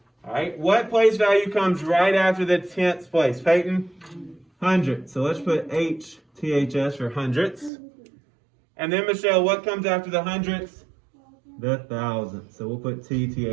All right. What place value comes right after the tenths place? Peyton? Hundredths. So let's put HTHS for hundredths. And then, Michelle, what comes after the hundredths? The thousandths. So we'll put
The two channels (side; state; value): left; drops out; at 7.7 s